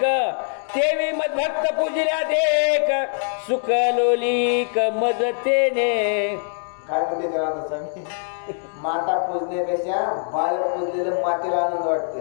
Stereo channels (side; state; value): right; silent; 64 dB below the other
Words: तेवी मदभक्त पूजिल्या देख सुख लोलिक मजतेने. काय म्हणते तेव्हा स्वामी, माता पूजण्यापेक्षा बाळ पूजलेलं मातेला आनंद